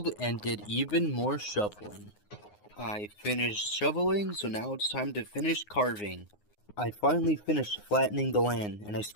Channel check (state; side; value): late; right; 9.6 ms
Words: and did even more shoveling. I finished shoveling, so now it's time to finish carving. I finally finished flattening the land, and I